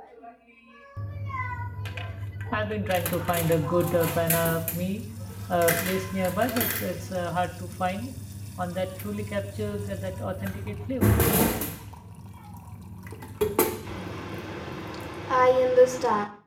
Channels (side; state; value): both; identical; correlation 1.00